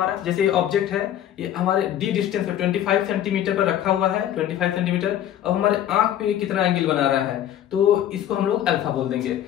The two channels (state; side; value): quieter; right; 11.2 dB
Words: जैसे ऑब्जेक्ट है ये हमारे डी डिस्टेंस पे 25 सेंटीमीटर पर रखा हुआ है, 25 सेंटीमीटर। अब हमारे आंख पे कितना एंगल बना रहा है, तो इसको हम लोग अल्फा बोल देंगे।